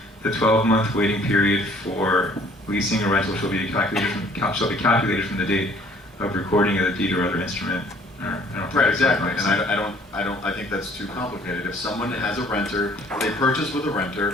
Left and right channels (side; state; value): both; normal; correlation 0.57